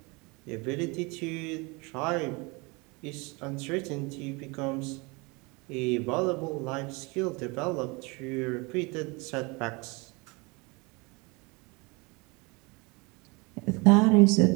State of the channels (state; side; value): quieter; left; 27.5 dB